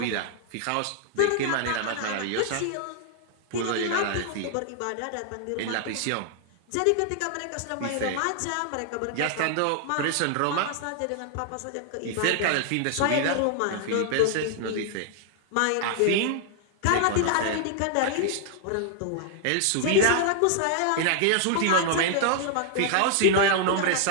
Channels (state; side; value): different; both; correlation 0.00